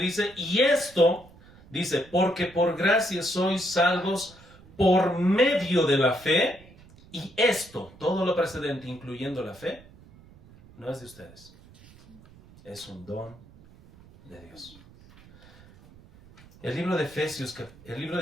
y esto, dice, porque por gracia sois salvos por medio de la fe, y esto, todo lo precedente, incluyendo la fe, no es de ustedes, es un don de Dios. El libro de Efesios, el libro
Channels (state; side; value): noise; right; rumble, 23 dB below the sound